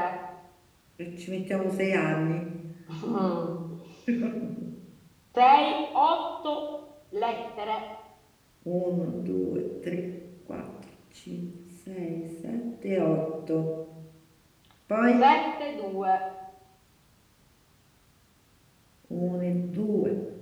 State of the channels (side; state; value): both; identical; correlation 1.00